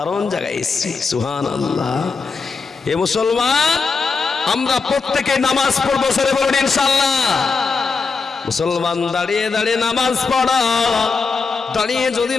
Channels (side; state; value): right; quieter; 4.8 dB